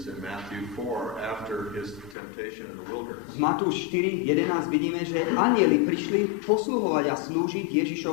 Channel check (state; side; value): drops out; right; at 2.1 s